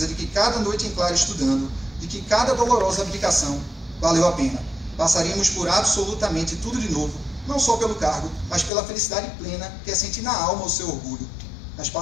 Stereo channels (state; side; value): drops out; right; at 8.7 s